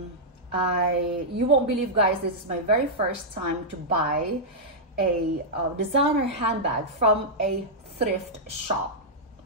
you won't believe, guys, this is my very first time to buy a designer handbag from a thrift shop.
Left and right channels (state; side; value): normal; both; correlation -0.09